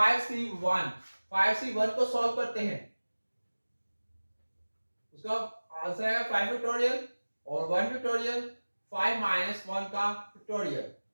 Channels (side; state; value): both; inverted; correlation -1.00